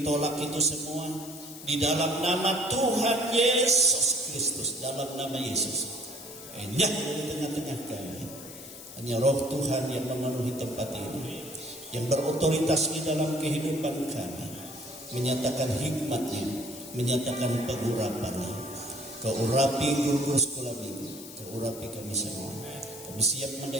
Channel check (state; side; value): noise; left; hiss, 14 dB below the sound